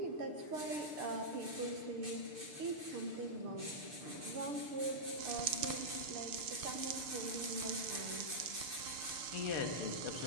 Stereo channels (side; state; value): left; late; 6.7 ms